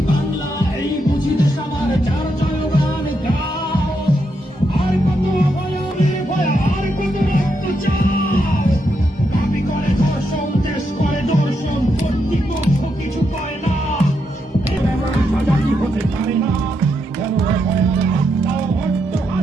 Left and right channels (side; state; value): both; normal; correlation 0.81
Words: বাংলা, এই বুঝি দেশ আমার, যার জয়গান গাও। আর কত অভয় নির্ভয়, আর কত রক্ত চাও। দাবি করে ধর্ষণ, দেশ করে দর্শন, কর্তৃপক্ষ কিছু করে না। সাজা কি হতে পারে না, কেন ভয়ার আত্মাও হট্ট